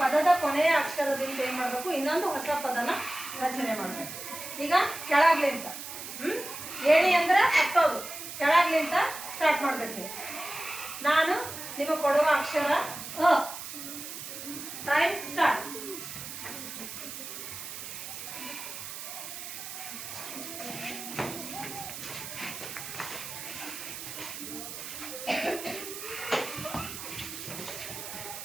ಪದದ ಕೊನೆಯ ಅಕ್ಷರದಿಂದ ಏನು ಮಾಡಬೇಕು, ಇನ್ನೊಂದು ಹೊಸ ಪದನ ರಚನೆ ಮಾಡಬೇಕು. ಈಗ ಕೆಳಗ್ಲಿಂತ ಏಣಿ ಅಂದ್ರೆ ಹತ್ತೋದು, ಕೆಳಗ್ಲಿಂತ ಸ್ಟಾರ್ಟ್ ಮಾಡಬೇಕು. ನಾನು ನಿಮಗೆ ಕೊಡುವ ಅಕ್ಷರ ಅ. Time start.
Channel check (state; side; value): noise; right; hiss, 9 dB below the sound